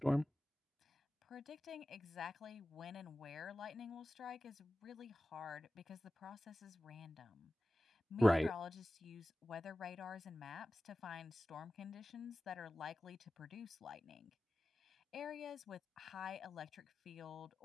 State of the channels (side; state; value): both; normal; correlation 0.95